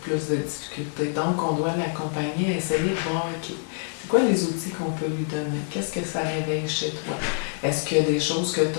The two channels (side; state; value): right; silent; 61 dB below the other